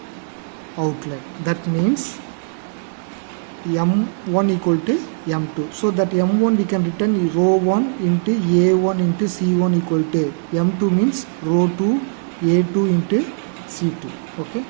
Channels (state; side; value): silent; left; digital silence